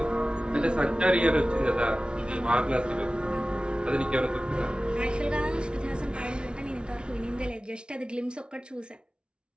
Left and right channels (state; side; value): late; left; 0.056 ms